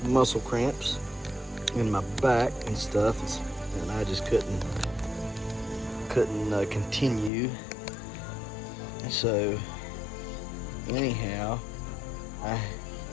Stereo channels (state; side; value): drops out; right; at 7.3 s